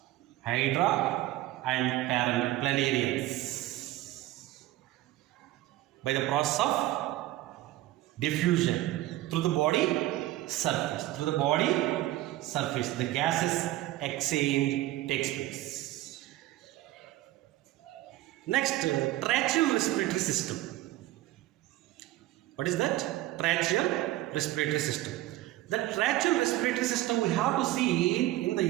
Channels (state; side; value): quieter; left; 16.0 dB